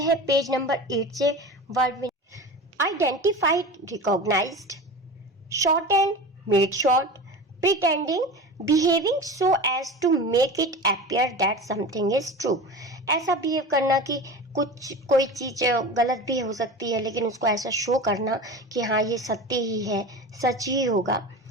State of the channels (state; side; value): normal; both; correlation 0.32